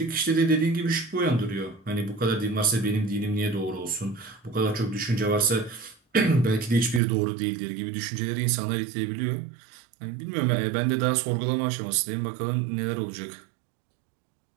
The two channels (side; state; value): left; drops out; at 7.0 s